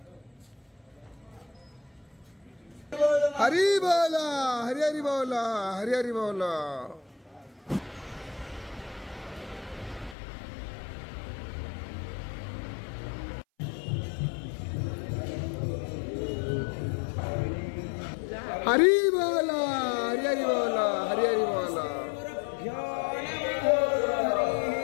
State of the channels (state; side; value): drops out; right; at 10.2 s